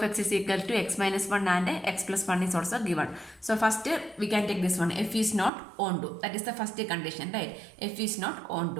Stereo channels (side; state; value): left; drops out; at 5.5 s